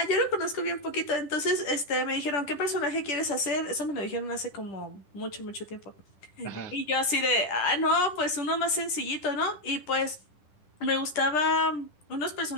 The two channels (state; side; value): late; right; 10 ms